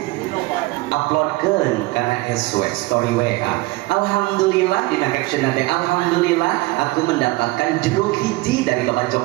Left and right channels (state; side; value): quieter; left; 21.7 dB